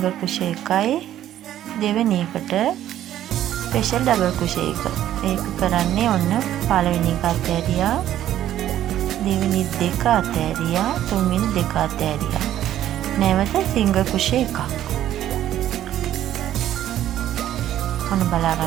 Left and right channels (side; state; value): left; quieter; 12.1 dB